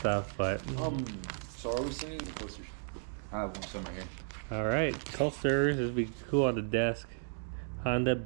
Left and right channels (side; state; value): left; silent; digital silence